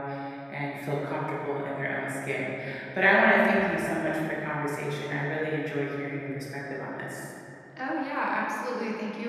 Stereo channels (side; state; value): both; identical; correlation 1.00